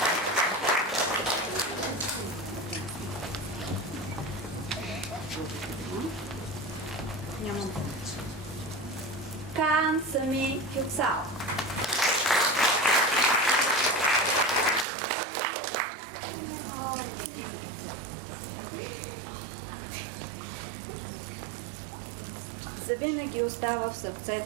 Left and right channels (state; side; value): drops out; left; at 14.9 s